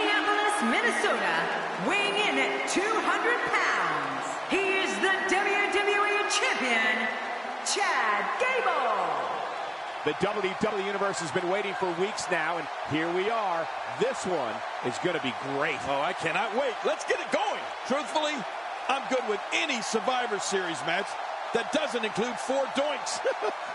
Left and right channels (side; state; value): both; identical; correlation 1.00